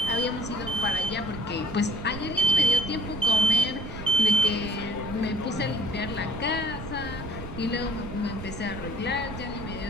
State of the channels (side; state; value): right; noise; rumble, 10 dB below the sound